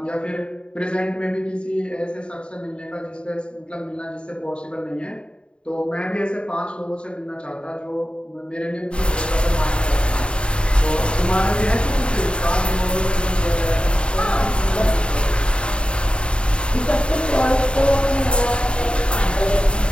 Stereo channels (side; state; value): right; late; 0.054 ms